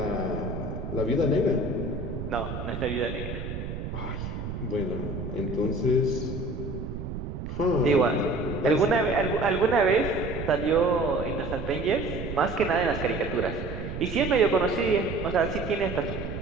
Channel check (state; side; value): noise; right; rumble, 6 dB below the sound